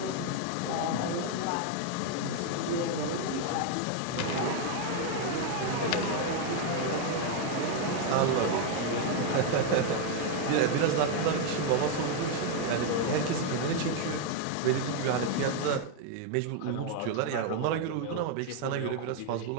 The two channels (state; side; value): different; both; correlation 0.01